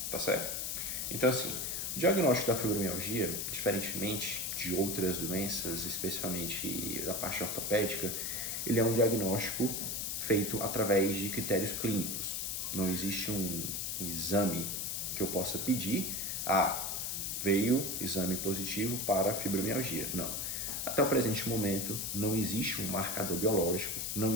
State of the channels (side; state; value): left; noise; hiss, 2 dB below the sound